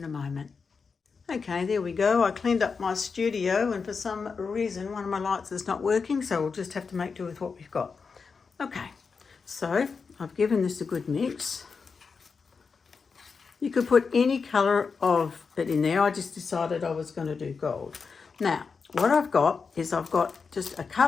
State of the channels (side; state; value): right; quieter; 5.2 dB